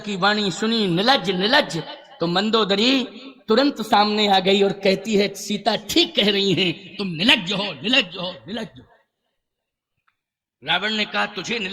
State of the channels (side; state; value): both; identical; correlation 1.00